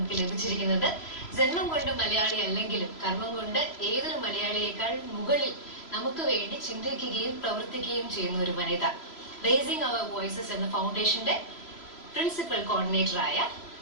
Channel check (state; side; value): late; right; 3.0 ms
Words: ലഭിച്ചിരിക്കുന്നത്. ജന്മം കൊണ്ട് മലയാളി അല്ലെങ്കിലും കർമ്മം കൊണ്ട് ഏതൊരു മലയാളിയേക്കാൾ മുകളിൽ നമുക്ക് വേണ്ടി ചിന്തിക്കുകയും പ്രവർത്തിക്കുകയും ചെയ്യുന്ന ഒരു വനിത. റേസിംഗ് അവർ വോയിസസ് എന്ന ഫൗണ്ടേഷന്റെ പ്രിൻസിപ്പൽ കോർഡിനേറ്ററായ